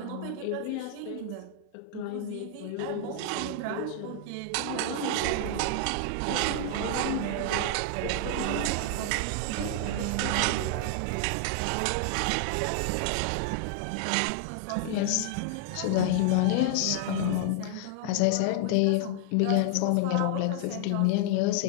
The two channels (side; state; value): both; different; correlation -0.01